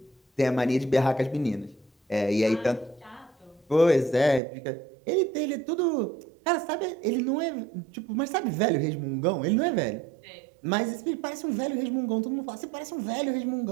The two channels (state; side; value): drops out; left; at 4.4 s